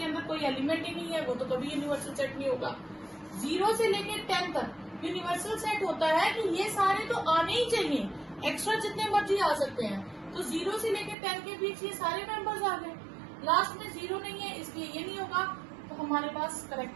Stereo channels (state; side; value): drops out; left; at 11.2 s